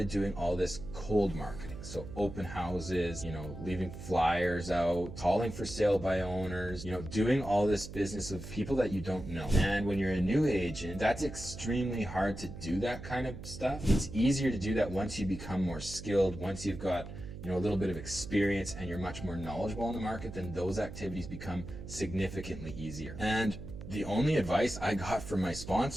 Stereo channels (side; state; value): right; noise; hum, 11 dB below the sound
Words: doing all this cold marketing. So open houses, leaving flyers out, calling for sale by owners, doing all this business of people that you don't know. And when you're a new agent, that's extremely hard to do that kind of stuff. It's easier to do that once you become more skilled, once you've got a little bit of experience and you're much more knowledgeable in the market, then those activities become significantly easier. And the only advice I got from my